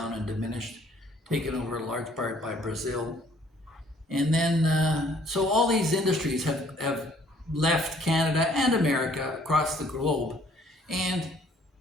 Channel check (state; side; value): normal; both; correlation 0.60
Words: and diminished, taken over in large part by Brazil. And then, so all these industries have left Canada and America across the globe. And